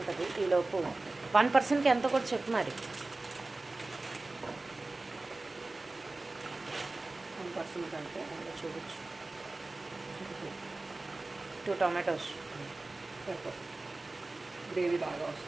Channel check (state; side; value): quieter; left; 3.1 dB